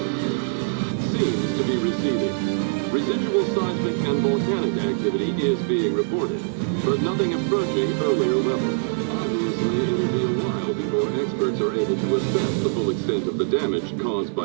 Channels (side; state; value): left; silent; digital silence